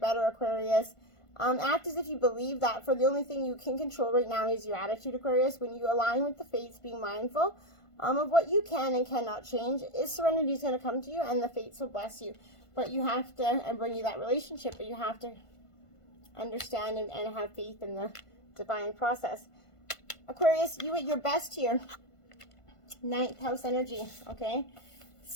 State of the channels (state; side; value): late; right; 1.5 ms